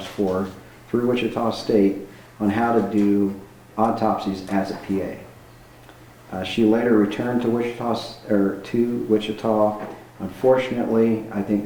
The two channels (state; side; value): identical; both; correlation 1.00